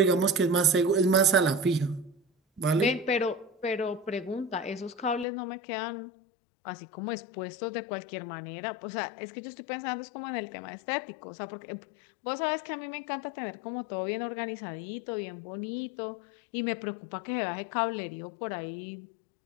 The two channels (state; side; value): drops out; right; at 5.2 s